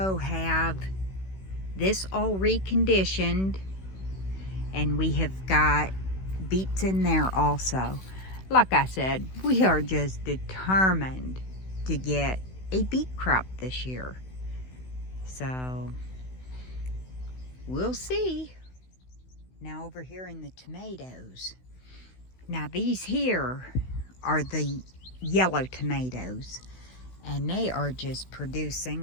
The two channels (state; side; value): late; right; 16 ms